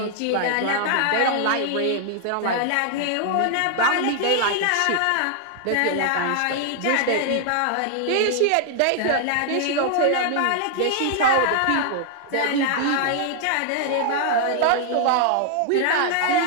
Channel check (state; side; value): different; both; correlation 0.00